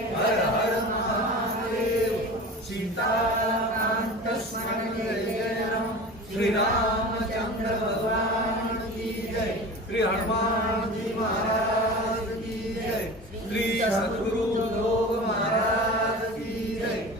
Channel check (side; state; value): both; normal; correlation 0.34